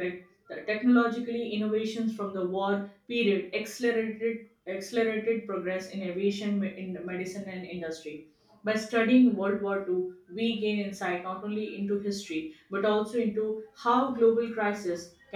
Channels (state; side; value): identical; both; correlation 1.00